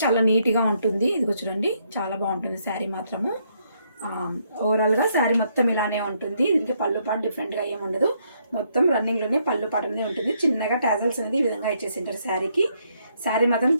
చాలా నీట్గా ఉంటుంది. ఇదిగో చూడండి, చాలా బాగుంటుంది శారీ మాత్రము. ఓవరాల్గా శారీ మొత్తం ఇలానే ఉంటుంది. దీనికి పళ్ళు పాటు డిఫరెంట్గా ఏమి ఉండదు. మొత్తం రన్నింగ్లోనే పళ్ళు పాటు అనేది ఉంటుంది. చిన్నగా టాజల్స్ అనేది ఈ విధంగా ఇచ్చేసింటారు శారీకి. శారీ మాత్రం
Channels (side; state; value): both; inverted; correlation -0.73